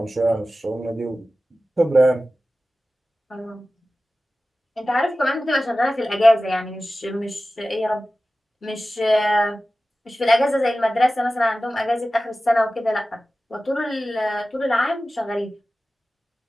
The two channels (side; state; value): both; normal; correlation 0.95